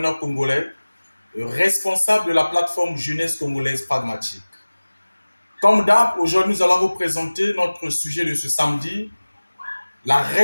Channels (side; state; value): both; inverted; correlation -1.00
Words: congolais, responsable de la plateforme Jeunesse congolaise pragmatique. Comme d'hab, aujourd'hui nous allons vous présenter notre sujet de ce samedi, la